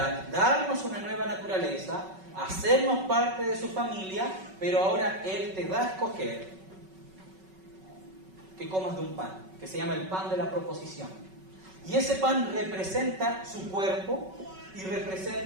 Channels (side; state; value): left; late; 5.3 ms